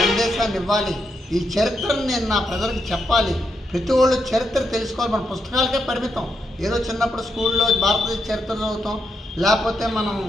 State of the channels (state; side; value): normal; both; correlation 0.82